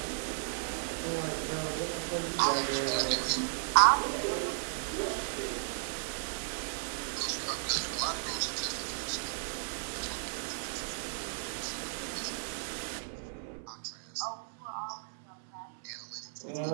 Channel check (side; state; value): left; silent; 55 dB below the other